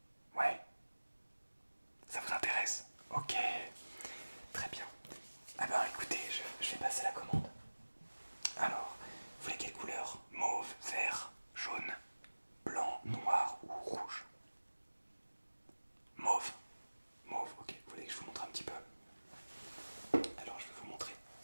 Ouais. Ça vous intéresse? Ok. Très bien. Ah ben écoutez, je vais passer la commande. Alors, vous voulez quelle couleur? Mauve, vert, jaune, blanc, noir ou rouge? Mauve. Mauve, ok. Vous voulez que je vous montre un petit peu? Alors je vais vous montrer.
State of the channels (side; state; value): both; inverted; correlation -1.00